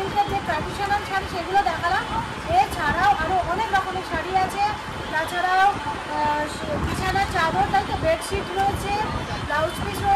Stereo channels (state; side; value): identical; both; correlation 1.00